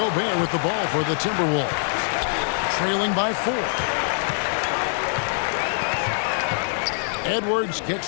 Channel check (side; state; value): right; silent; digital silence